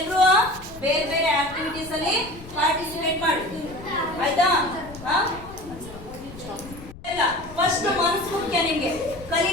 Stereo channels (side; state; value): left; noise; rumble, 17 dB below the sound